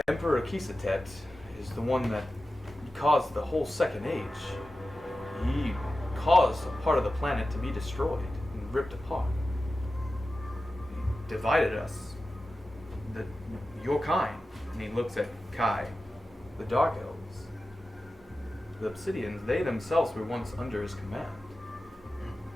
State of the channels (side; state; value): both; normal; correlation 0.94